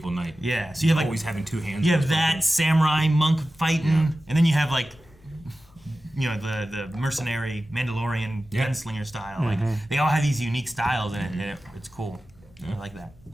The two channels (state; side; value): noise; left; hum, 28 dB below the sound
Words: knight. Yeah. So you have like always having two hands. You have that samurai monk fighting, and then you have like the mercenary Mandalorian gunslinger style. Like they all have these unique styles, and it's cool. I like that.